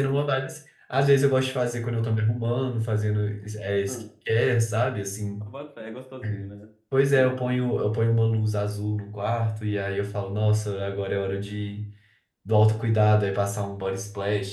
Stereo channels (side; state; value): both; identical; correlation 1.00